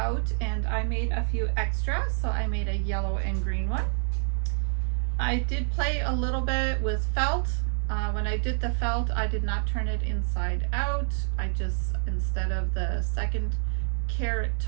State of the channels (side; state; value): left; silent; digital silence